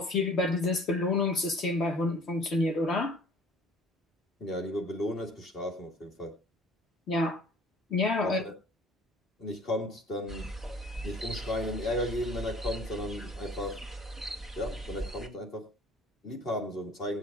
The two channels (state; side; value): normal; both; correlation 0.50